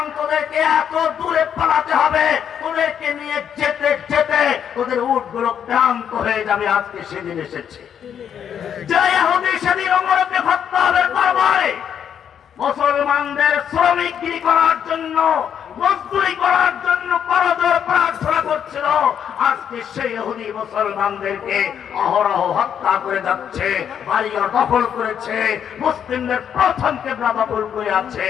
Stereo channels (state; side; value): quieter; right; 8.6 dB